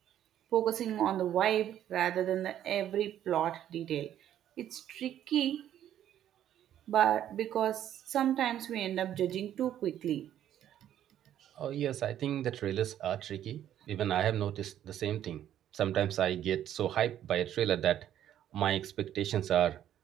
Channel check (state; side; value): quieter; left; 11.1 dB